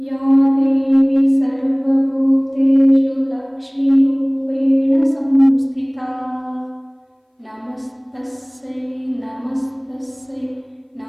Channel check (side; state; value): both; identical; correlation 1.00